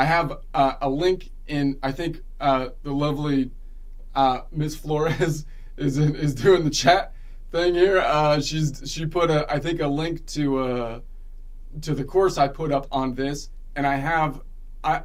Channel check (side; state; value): both; identical; correlation 1.00